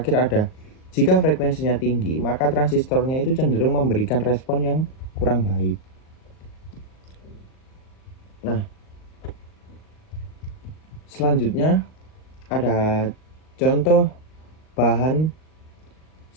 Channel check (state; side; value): late; right; 38 ms